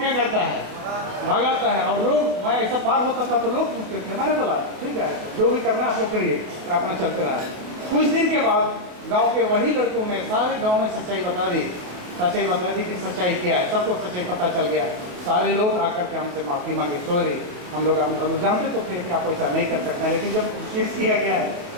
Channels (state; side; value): late; left; 28 ms